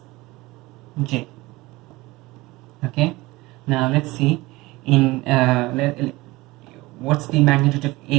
j. Okay, now let's see in what's the magnitude of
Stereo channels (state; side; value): quieter; left; 20.8 dB